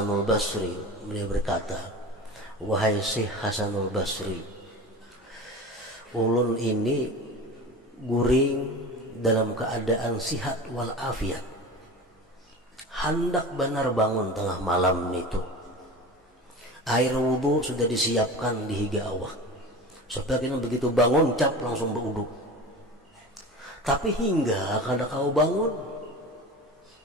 Basri. Beliau berkata, wahai Syekh Hasanul Basri, ulun ini guring dalam keadaan sihat walafiat, hendak benar bangun tengah malam itu. Air wudhu sudah disiapkan di higa awak, sebagian begitu bangun cap langsung berwudhu. Tapi hingga kada kau bangun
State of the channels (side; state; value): both; normal; correlation 0.33